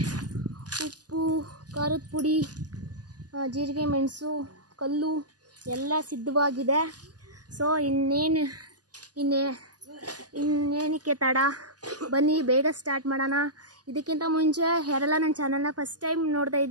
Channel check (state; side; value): late; left; 0.69 ms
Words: ಉಪ್ಪು, ಖಾರದ ಪುಡಿ, ಜೀರಿಗೆ, ಮೆಣಸು, ಕಲ್ಲು ಎಲ್ಲ ಸಿದ್ಧವಾಗಿದೆ. ಸೊ ಇನ್ನೇನಕ್ಕೆ ತಡ, ಬನ್ನಿ ಬೇಗ ಸ್ಟಾರ್ಟ್ ಮಾಡೋಣ. ಇದಕ್ಕಿಂತ ಮುಂಚೆ ಯಾರೆಲ್ಲ ನನ್ನ ಚಾನಲ್ನ ಫಸ್ಟ್ ಟೈಮ್ ನೋಡ್ತಾ